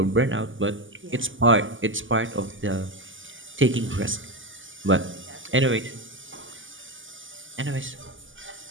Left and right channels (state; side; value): late; left; 0.57 ms